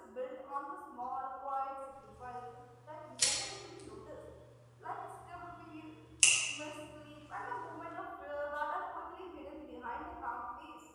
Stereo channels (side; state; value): both; identical; correlation 1.00